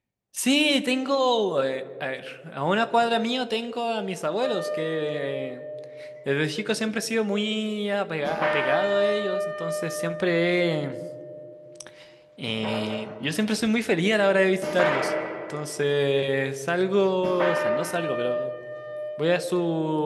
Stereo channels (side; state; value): both; identical; correlation 1.00